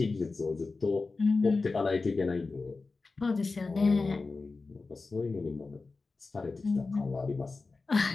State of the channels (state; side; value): quieter; right; 3.9 dB